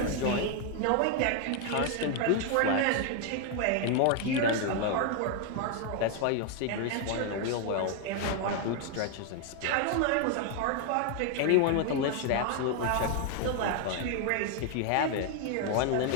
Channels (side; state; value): both; different; correlation 0.01